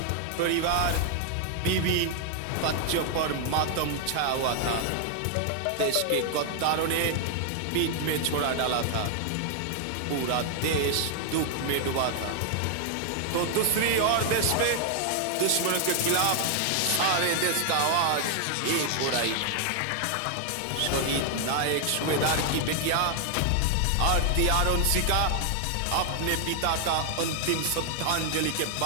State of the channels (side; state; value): both; different; correlation 0.00